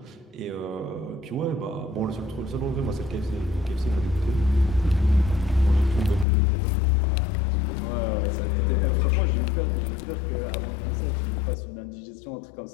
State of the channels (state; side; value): drops out; right; at 6.2 s